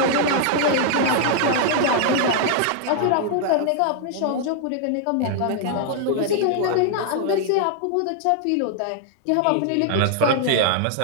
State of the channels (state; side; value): different; both; correlation 0.00